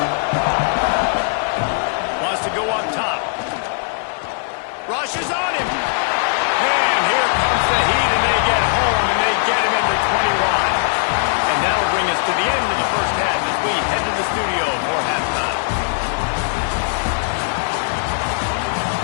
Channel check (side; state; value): right; silent; 59 dB below the other